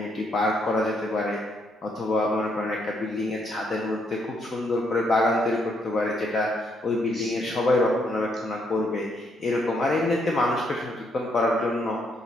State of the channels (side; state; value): both; normal; correlation 0.74